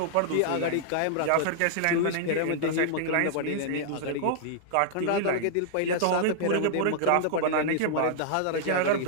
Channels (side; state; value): both; different; correlation -0.01